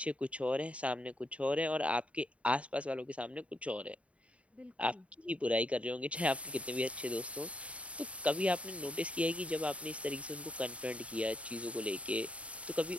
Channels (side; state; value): left; late; 0.064 ms